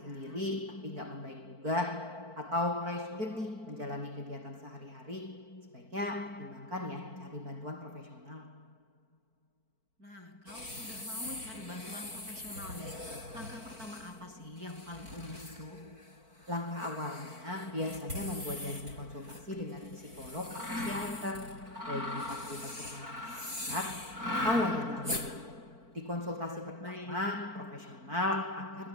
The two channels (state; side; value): late; left; 4.5 ms